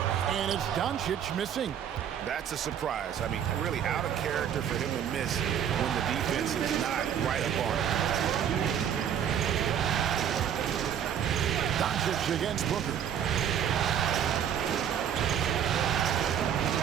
And it's Doncic missing. That's a surprise. I mean, really out of character for him to miss when the defense is not right up on him. Doncic against Booker.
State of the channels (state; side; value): quieter; left; 9.0 dB